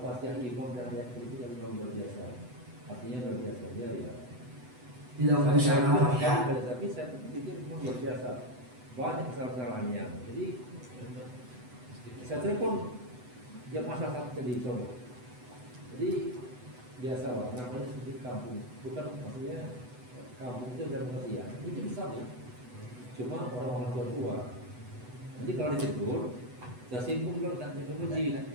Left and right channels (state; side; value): late; left; 8.0 ms